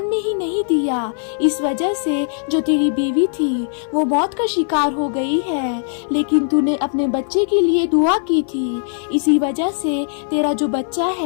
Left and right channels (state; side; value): silent; right; 59 dB below the other